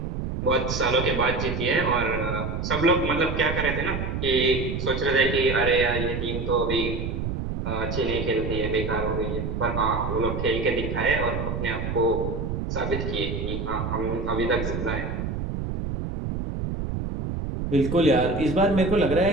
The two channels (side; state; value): right; noise; rumble, 3 dB below the sound